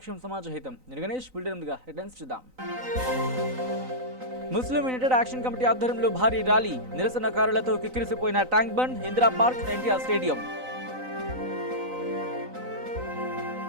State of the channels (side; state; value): left; late; 3.9 ms